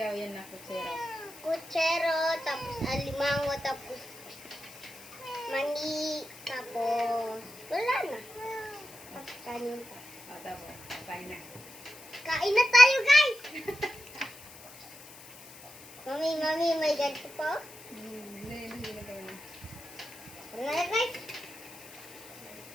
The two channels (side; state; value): left; noise; hiss, 18 dB below the sound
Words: yan na, kutsero. Kutsero, tapos alimango, tapos mani, tapos wala na. Tapos kanin pa. O, tapos, kain na. Kain na tayo, guys! Mami, may ganito pa? Hindi na kain na. Ano na, guys?